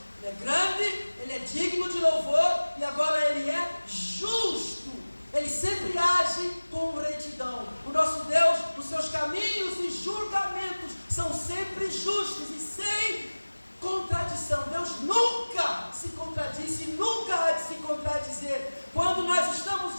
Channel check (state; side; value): inverted; both; correlation -1.00